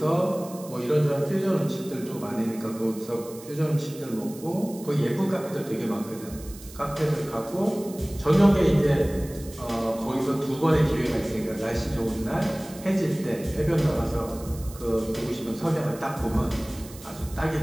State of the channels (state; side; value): noise; right; hiss, 18 dB below the sound